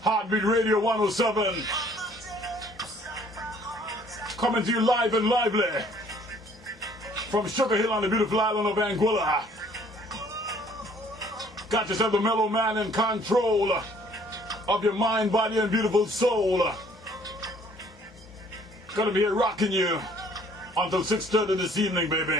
Heartbeat Radio 107. Coming to you live and lively from Sugar Hill on the beautiful island of Anguilla. Got yourself the mellow man in control of your mind, body, and beautiful soul. Gonna be here rocking you until 6:30 this evening,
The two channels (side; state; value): both; normal; correlation 0.58